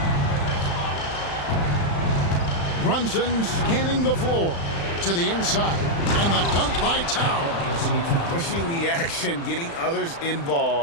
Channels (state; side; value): late; right; 35 ms